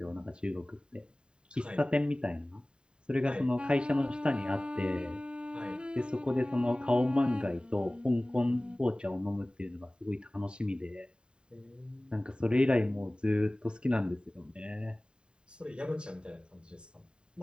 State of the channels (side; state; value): left; late; 0.050 ms